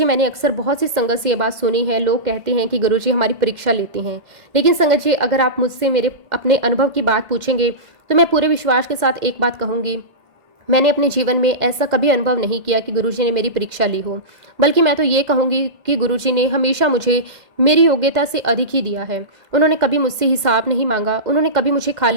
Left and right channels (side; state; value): left; late; 2.0 ms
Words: मैंने अक्सर बहुत सी संगत से ये बात सुनी है। लोग कहते हैं कि गुरुजी हमारी परीक्षा लेते हैं। लेकिन संगत जी, अगर आप मुझसे मेरे अपने अनुभव की बात पूछेंगे तो मैं पूरे विश्वास के साथ एक बात कहूँगी, मैंने अपने जीवन में ऐसा कभी अनुभव नहीं किया कि गुरुजी ने मेरी परीक्षा ली हो। बल्कि मैं तो ये कहूँगी कि गुरुजी ने हमेशा मुझे मेरी योग्यता से अधिक ही दिया है। उन्होंने कभी मुझसे हिसाब नहीं मांगा, उन्होंने कभी मुझे